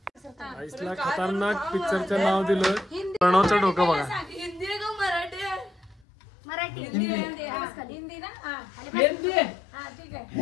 आईसला खतरनाक पिक्चरचं नाव दिलं प्रणवचं डोकं बघा हिंदी आहे का मराठी आहे मराठी हिंदी ना हा ठीक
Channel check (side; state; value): right; drops out; at 6.1 s